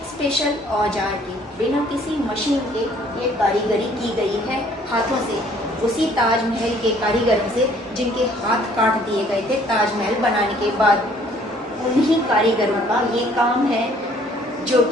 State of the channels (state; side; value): normal; both; correlation 0.59